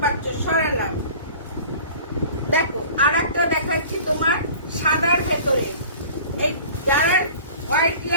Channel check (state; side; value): inverted; both; correlation -0.43